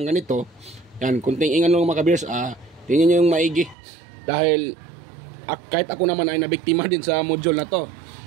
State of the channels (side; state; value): left; drops out; at 3.8 s